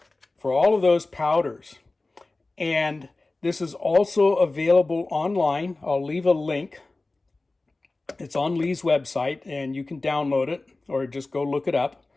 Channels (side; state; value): right; quieter; 3.2 dB